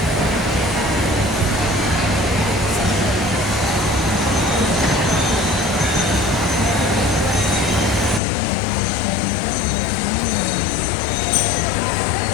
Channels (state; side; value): drops out; right; at 8.2 s